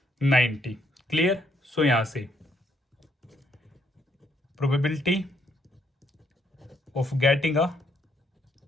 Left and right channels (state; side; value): normal; both; correlation 0.71